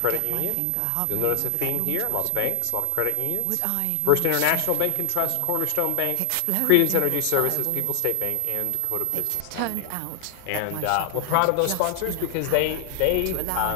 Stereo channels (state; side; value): different; both; correlation 0.00